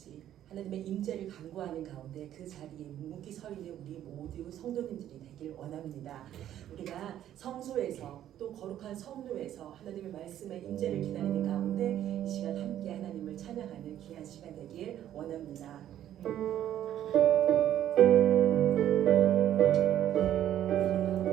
하나님의 임재를 간구하는 가운데 그 자리에 묵묵히 서 있는 우리 모두 성도님들이 되길 원합니다. 우리가 성소에서 또 거룩한 성루에서 하나님의 말씀의 임재를 기다리는 가운데 이 시간 함께 하나님을 찬양하는 귀한 시간 되길 원합니다.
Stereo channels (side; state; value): left; quieter; 11.5 dB